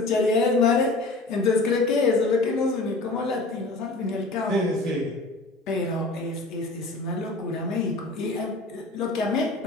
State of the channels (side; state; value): right; quieter; 3.0 dB